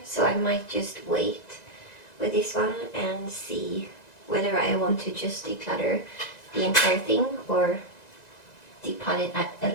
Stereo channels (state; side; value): late; right; 2.0 ms